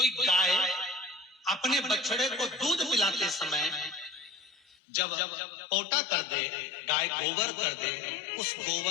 गाय अपने बछड़े को दूध पिलाते समय जब पोटा कर दे, गाय गोबर कर दे, उस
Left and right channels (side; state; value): right; drops out; at 4.8 s